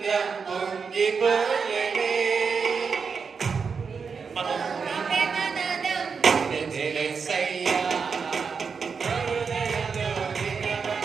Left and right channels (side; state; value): left; quieter; 5.6 dB